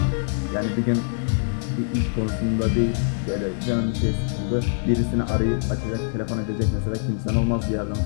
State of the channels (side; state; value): right; silent; 63 dB below the other